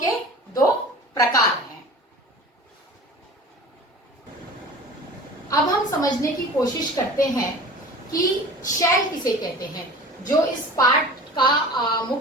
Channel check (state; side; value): normal; both; correlation 0.39